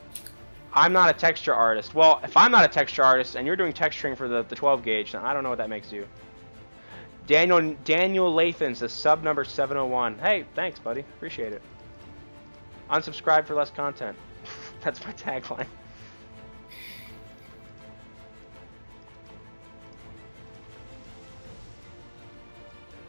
I'm not a texture artist. Well, if I'm not a texture artist and you're doing texturing for the 12 gauge, then I don't know what that makes you. Daniel Lathan says sub number 701. Hey, thanks, buddy. Appreciate it. Unsubscribe for less content. That's my tagline.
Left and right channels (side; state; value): both; inverted; correlation -1.00